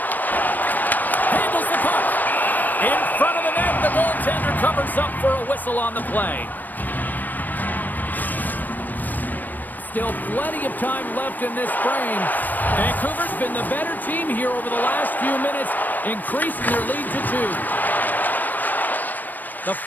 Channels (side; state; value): right; late; 0.084 ms